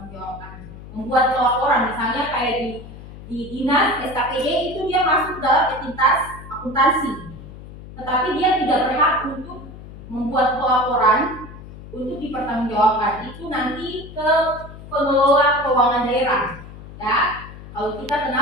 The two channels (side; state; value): left; noise; hum, 15 dB below the sound